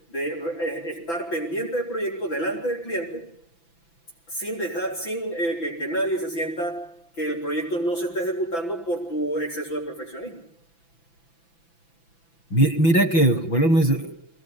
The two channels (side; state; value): right; late; 6.0 ms